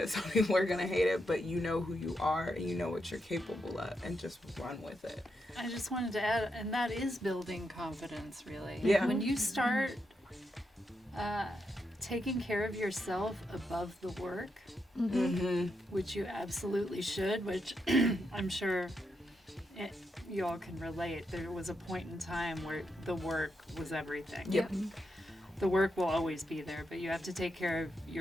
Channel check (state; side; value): normal; both; correlation 0.83